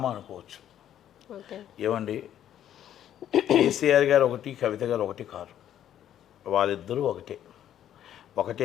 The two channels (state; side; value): quieter; right; 10.8 dB